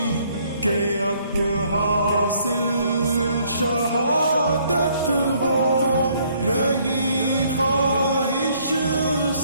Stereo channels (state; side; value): inverted; both; correlation -0.65